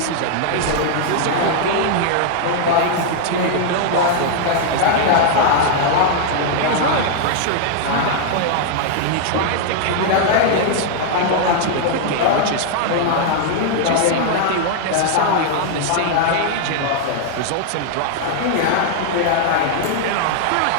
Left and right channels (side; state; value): both; different; correlation -0.01